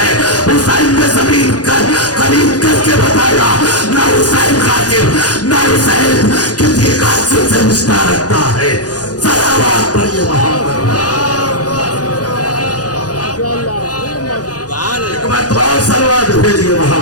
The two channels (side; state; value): right; late; 0.68 ms